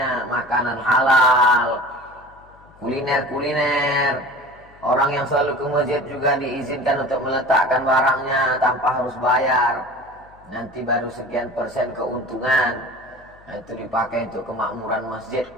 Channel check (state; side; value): noise; left; hum, 27 dB below the sound